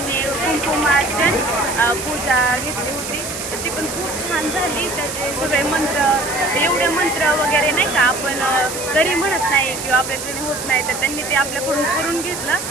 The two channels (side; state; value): right; noise; hiss, 7 dB below the sound